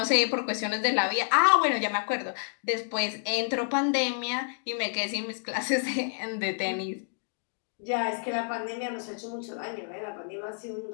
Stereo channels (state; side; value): silent; right; digital silence